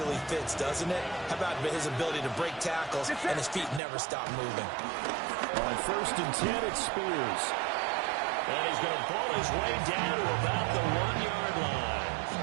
fits, doesn't it? How about his ability to break tackles and his feet never stop moving? On 1st and 10, it's Spears. And he's going to pull his way down to about the 1-yard line.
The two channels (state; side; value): drops out; left; at 3.8 s